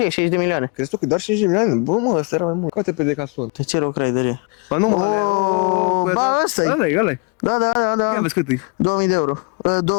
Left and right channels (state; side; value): quieter; right; 32.0 dB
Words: e 60 de milioane. Crezi tu că doar 50 de milioane? Bă, mă, ăsta era mai mult. Coate pe Decathlon. De ce Rock Rider e? Bă, nu mă, Oh, alea, ba, ăsta-i. ăla-i, ăla-i. Da, da, da, da. Ia vezi cât e. 2000 de euro.